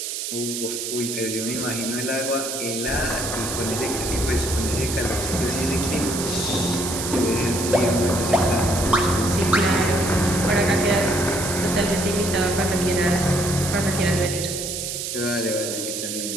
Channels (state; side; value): noise; right; hiss, 4 dB below the sound